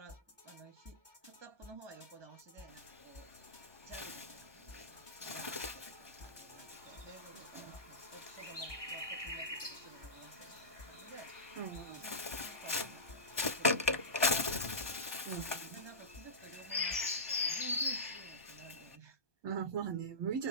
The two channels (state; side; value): late; left; 1.2 ms